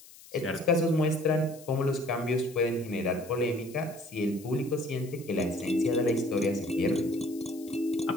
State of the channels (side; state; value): left; noise; hiss, 21 dB below the sound